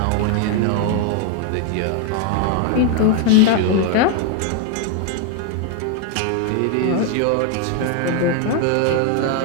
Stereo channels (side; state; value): both; different; correlation 0.00